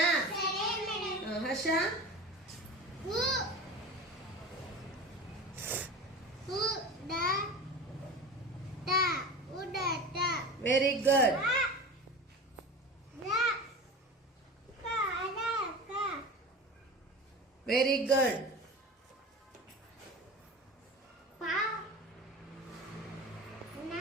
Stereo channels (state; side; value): normal; both; correlation 0.32